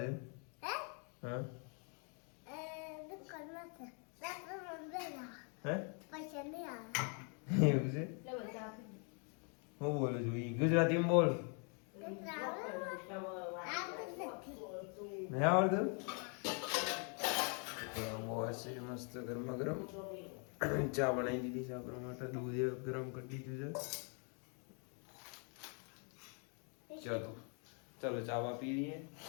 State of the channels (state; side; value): quieter; right; 39.1 dB